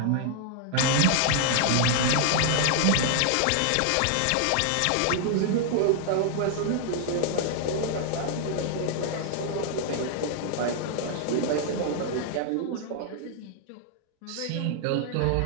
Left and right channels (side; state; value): both; different; correlation 0.00